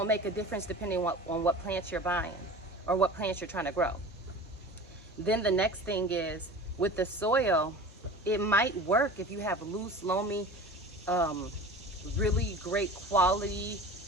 make a difference depending on what plants you're buying or what plants you're trying to grow. Then the next thing is with the soil, it might work if you have loose, loamy, really great quality,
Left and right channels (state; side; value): normal; both; correlation 0.37